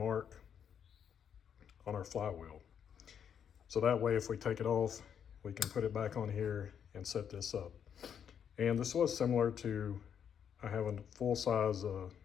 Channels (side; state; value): right; quieter; 8.1 dB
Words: on our flywheel. So that way if we take it off, we can put it back on here and set this up. And this was similar to, I have a full-size